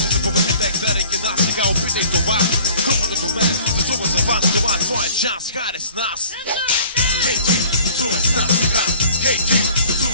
се побъркате, гледайки нас сега, опитай това. Групата до мен, танцува за вас, това е твоя шанс, хайде с нас. Хей, ти, танцувай с нас сега. Хей, ти,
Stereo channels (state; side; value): inverted; both; correlation -0.50